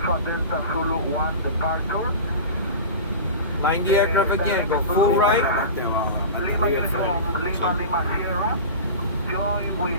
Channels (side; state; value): both; inverted; correlation -0.30